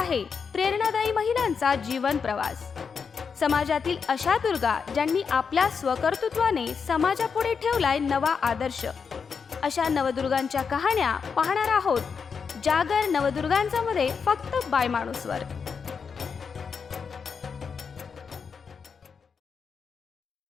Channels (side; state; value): right; quieter; 5.9 dB